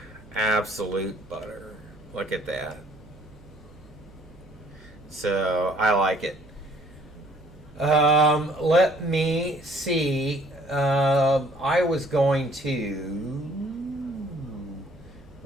Absolute butter. Look at that. So, I like it. Let me see. I was going to...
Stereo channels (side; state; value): right; noise; hum, 24 dB below the sound